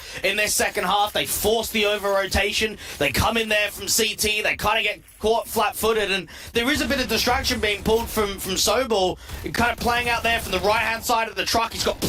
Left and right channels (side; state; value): both; identical; correlation 1.00